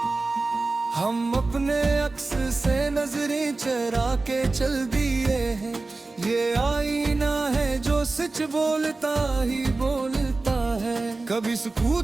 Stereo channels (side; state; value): left; quieter; 3.5 dB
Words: हम अपने अक्स से नजरें चरा के चल दिए हैं, ये आईना है जो सच बोलता ही बोलता है। कभी